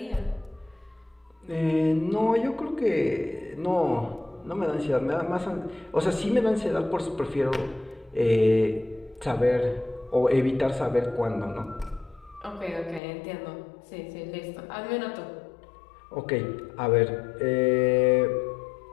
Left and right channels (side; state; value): right; drops out; at 13.0 s